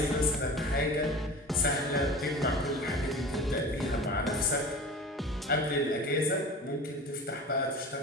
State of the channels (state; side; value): normal; both; correlation 0.36